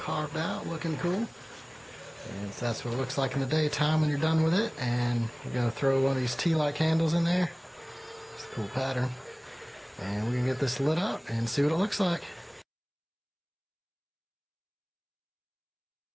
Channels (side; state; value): both; identical; correlation 1.00